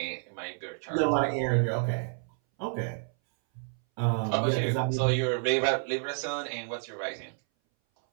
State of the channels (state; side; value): silent; left; 58 dB below the other